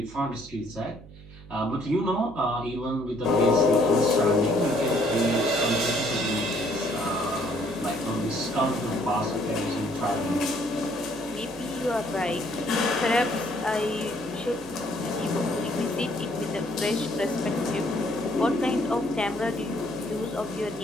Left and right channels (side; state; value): right; noise; hum, 19 dB below the sound